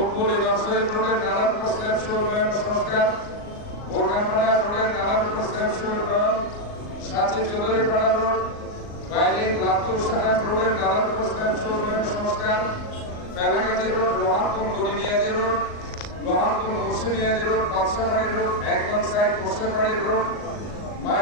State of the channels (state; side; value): late; right; 38 ms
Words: নরসিংদী রোডের নালার উপর স্ল্যাব সহ উন্নয়ন সংস্কার, বোরখানপাড়া রোডের নালার উপর স্ল্যাব সহ উন্নয়ন, সাথে চৌধুরীপাড়া রোড, বাইলিন লাভপুর সাহাব রোডের নালার উপর স্ল্যাব সহ উন্নয়ন সংস্কার, ফেলাগাজী রোড, লোহারপুর গড়িমিয়াজী রোড, লোহারপুর মুসলিমিয়াজী রোড, পাঁচকাবাড়ি রোড, একদম সাইড মুসলিমবাড়ি রোড,